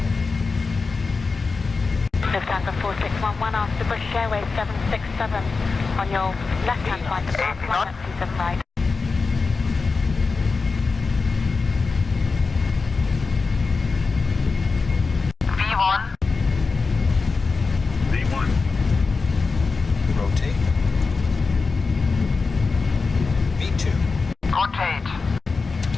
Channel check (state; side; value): quieter; right; 4.3 dB